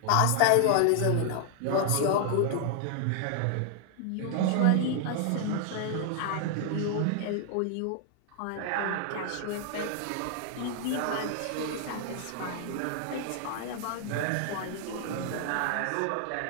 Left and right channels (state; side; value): different; both; correlation 0.00